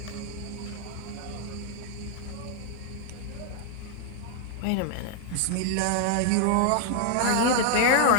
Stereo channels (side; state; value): both; different; correlation 0.00